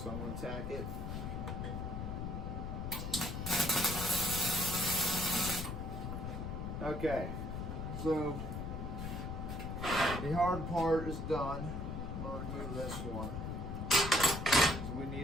I'm going to tack it. Okay, so the hard part is done. I'm going to remove this one because we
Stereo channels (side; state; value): left; noise; rumble, 4 dB below the sound